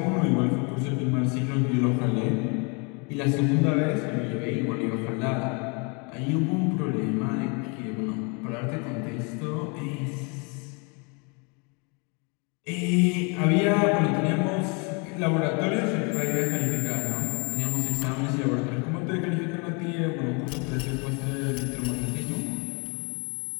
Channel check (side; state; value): right; quieter; 32.9 dB